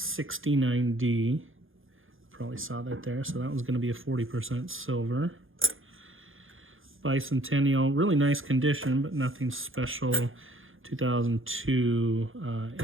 Probably saw that there. So that one's going to be a 40% silver. Bicentennial, really nice condition, but nothing special. 2002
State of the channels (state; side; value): late; left; 0.59 ms